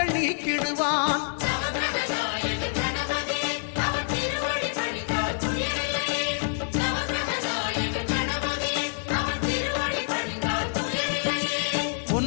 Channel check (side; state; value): right; silent; 60 dB below the other